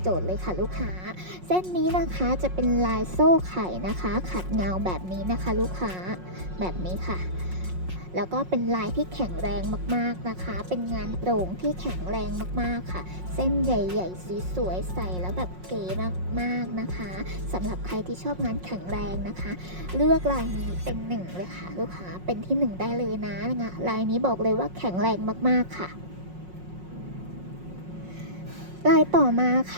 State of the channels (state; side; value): late; left; 5.5 ms